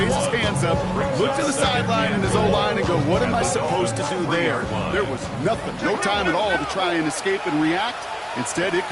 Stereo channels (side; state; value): both; identical; correlation 1.00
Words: his hands up, look to the sideline in his O-line and go, what am I supposed to do there? There was nothing, no time at all to try and escape and react. Instead, it